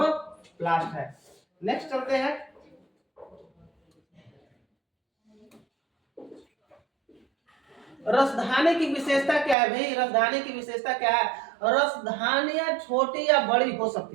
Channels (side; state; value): left; drops out; at 9.6 s